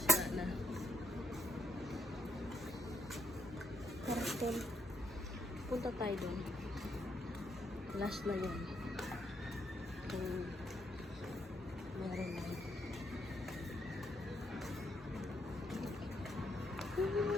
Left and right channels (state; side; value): normal; both; correlation 0.75